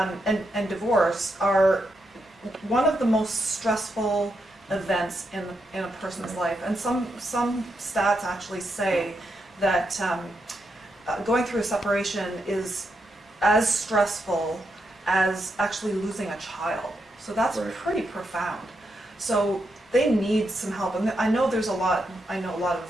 divorce are one of the most stressful events in a person's life, and some stats actually say that going through a separation is as stressful as actually losing a child. So that's pretty profound. So they need some help, and I know a lot of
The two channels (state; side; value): normal; both; correlation 0.83